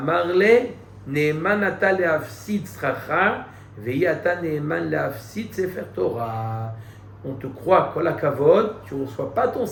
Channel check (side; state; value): both; identical; correlation 1.00